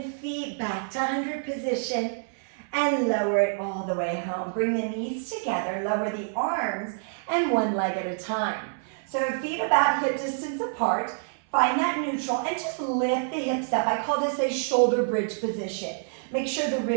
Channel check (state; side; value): silent; left; 60 dB below the other